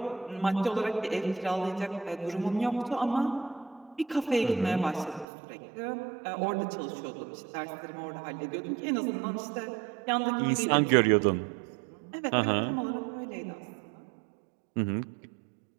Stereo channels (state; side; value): drops out; left; at 5.2 s